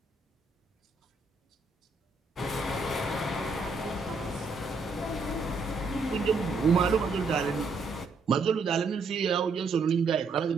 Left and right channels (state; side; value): quieter; left; 3.9 dB